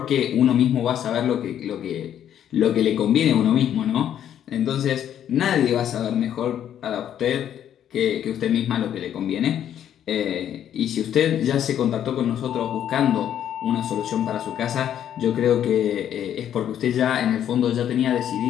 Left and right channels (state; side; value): quieter; right; 10.1 dB